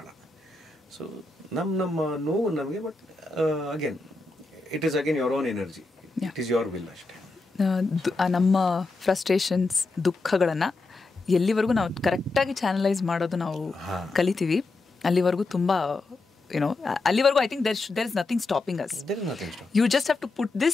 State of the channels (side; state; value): right; quieter; 3.4 dB